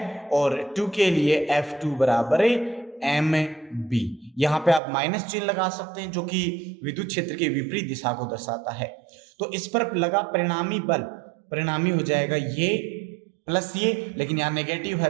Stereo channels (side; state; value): left; drops out; at 4.8 s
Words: और 2 के लिए F2 बराबर mb। यहां पे आप माइनस चिन्ह लगा सकते हैं जो कि विद्युत क्षेत्र के विपरीत दिशा को दर्शाता है। तो इस पर लगा परिणामी बल, परिणामी हो जाएगा ये प्लस ये, लेकिन यहाँ नेगेटिव